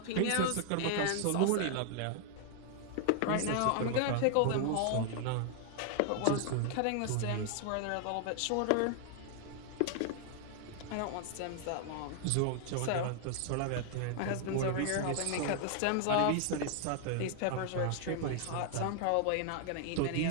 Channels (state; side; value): different; both; correlation 0.00